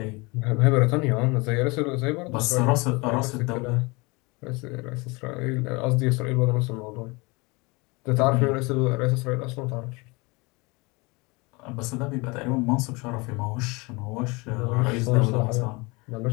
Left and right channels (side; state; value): right; quieter; 26.4 dB